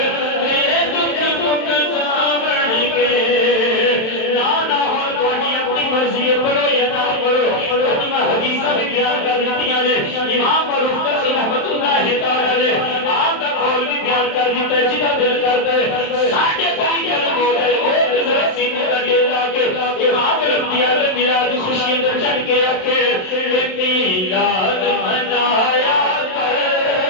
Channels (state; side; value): late; right; 27 ms